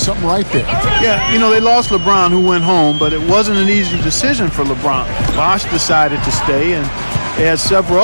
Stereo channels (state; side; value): inverted; both; correlation -1.00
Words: right there. Yeah, you know, they lost LeBron, who went home, but it wasn't an easy decision for LeBron. Bosch decided to stay, and they had several